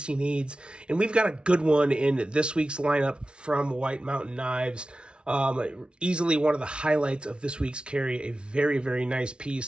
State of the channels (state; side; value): late; left; 0.057 ms